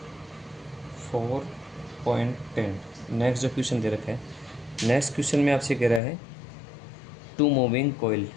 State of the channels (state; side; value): drops out; right; at 6.0 s